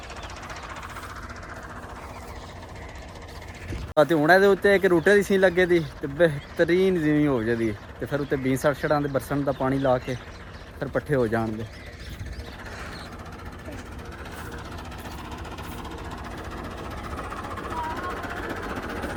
तो हुण इहदे उत्ते एक रूटे की सीन लगे दी ते बेहतरीन जीवी हो जाती तो फिर उत्ते 20 छड़ां दे बरसन का पानी ला के फिर पट्ठे हो जाण दे।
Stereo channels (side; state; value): both; identical; correlation 1.00